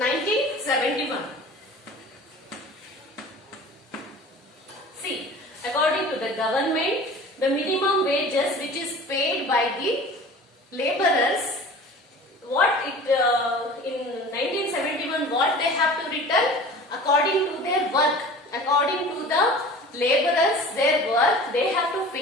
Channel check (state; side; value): normal; both; correlation 0.41